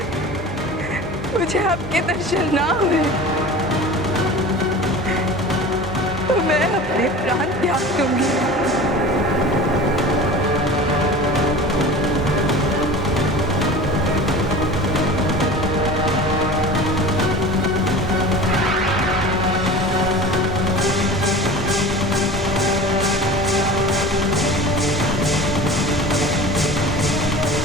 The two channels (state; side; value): normal; both; correlation 0.36